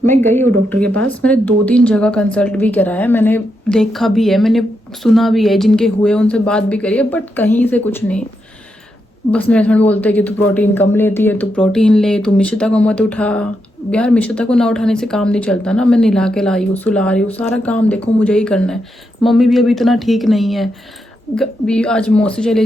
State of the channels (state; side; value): normal; both; correlation 0.83